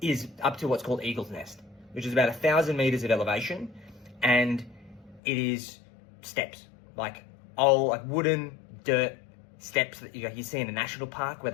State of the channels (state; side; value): drops out; right; at 5.2 s